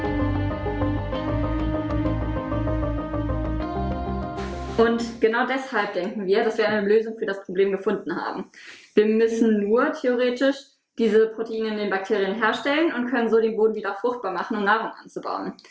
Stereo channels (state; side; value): identical; both; correlation 1.00